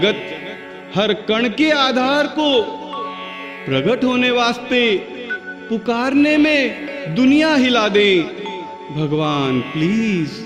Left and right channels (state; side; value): identical; both; correlation 1.00